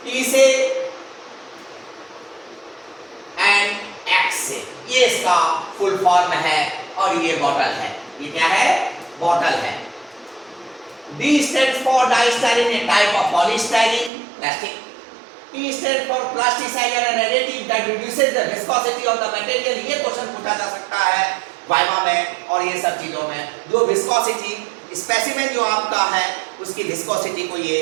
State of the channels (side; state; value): left; drops out; at 14.1 s